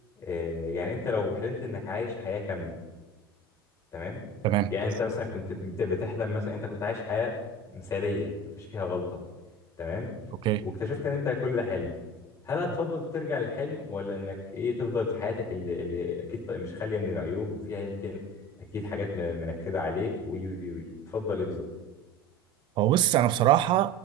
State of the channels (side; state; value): both; normal; correlation 0.38